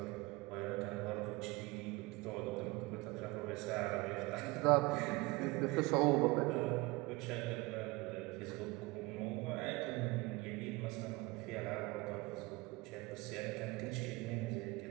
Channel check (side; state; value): left; quieter; 23.6 dB